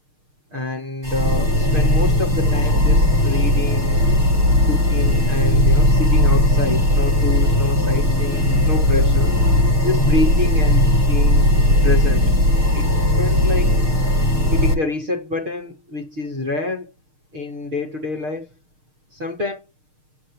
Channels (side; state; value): left; late; 6.5 ms